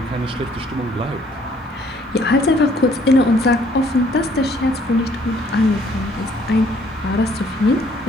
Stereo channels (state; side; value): normal; both; correlation 0.62